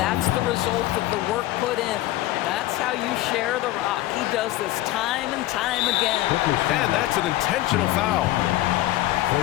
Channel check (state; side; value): quieter; right; 16.1 dB